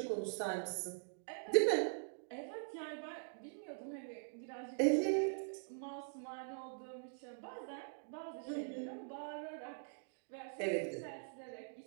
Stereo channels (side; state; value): left; silent; digital silence